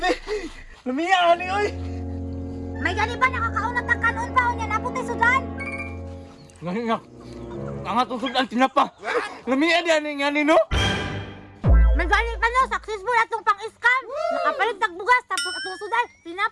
Lumiya, ani, oy! May gani ba nakakaunat ang kanon pa o niya naputi sudan? Ngayon nga, ang atong sudan tinapa. Lumiya di, ani, ani, no? May gani pa no, successful atong pang-scam. Nakapalit tagbugas, tapos atong sudan,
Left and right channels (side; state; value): both; identical; correlation 1.00